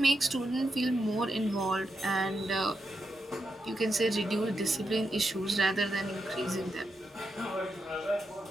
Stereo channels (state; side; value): normal; both; correlation 0.85